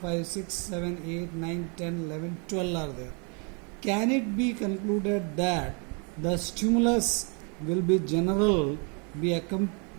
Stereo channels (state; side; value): quieter; left; 35.5 dB